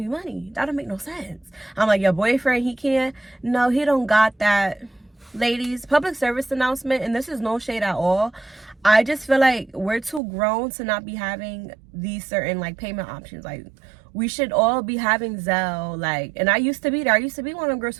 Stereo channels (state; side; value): drops out; left; at 10.2 s